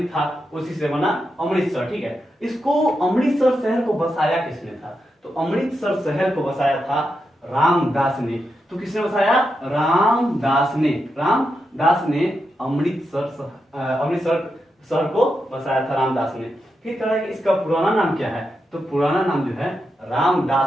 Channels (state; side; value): normal; both; correlation 0.86